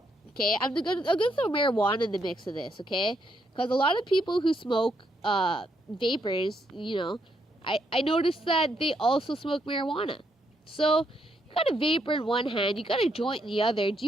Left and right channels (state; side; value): normal; both; correlation 0.76